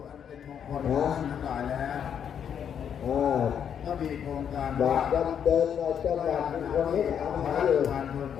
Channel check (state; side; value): quieter; right; 8.3 dB